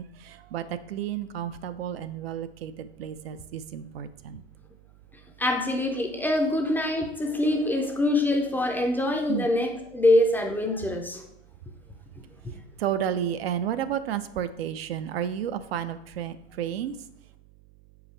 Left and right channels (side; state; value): right; noise; hum, 26 dB below the sound